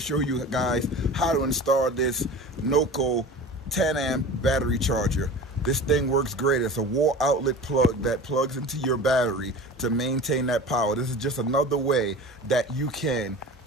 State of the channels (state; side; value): normal; both; correlation 0.36